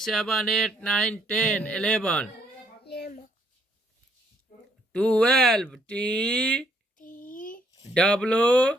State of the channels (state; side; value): normal; both; correlation 0.69